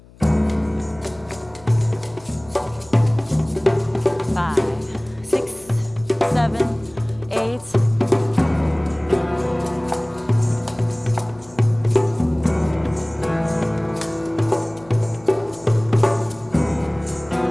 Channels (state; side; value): noise; left; hum, 24 dB below the sound